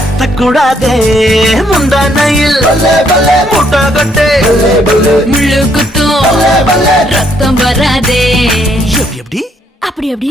கூடாதே முந்தானையில் முட்டை கட்டே முள்ளு குத்தும் ரத்தம் வராதே. எப்படி அப்படி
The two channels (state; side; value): normal; both; correlation 0.70